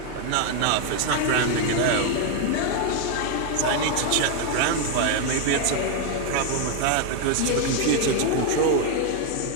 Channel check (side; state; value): both; different; correlation 0.01